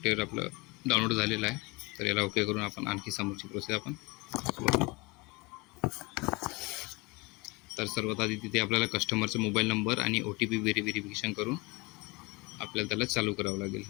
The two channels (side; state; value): right; quieter; 25.9 dB